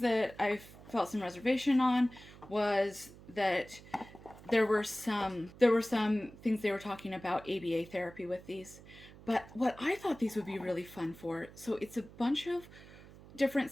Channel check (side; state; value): right; noise; hum, 19 dB below the sound